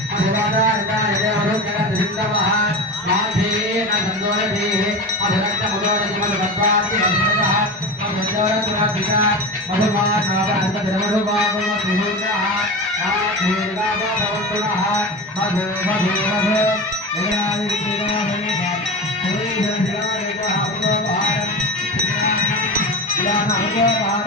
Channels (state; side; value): normal; both; correlation 0.26